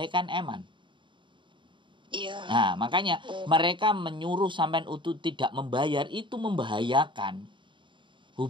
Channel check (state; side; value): late; left; 0.23 ms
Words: kan eman. Iya. Nah, makanya mereka menyuruh sampean untuk tidak membayar, itu membahayakan